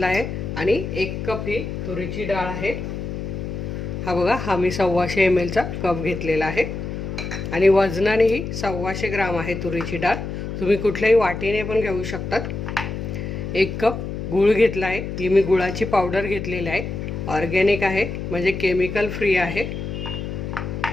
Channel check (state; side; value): noise; left; hum, 5 dB below the sound